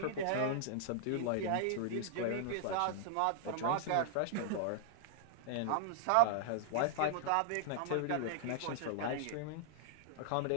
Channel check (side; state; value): both; different; correlation -0.01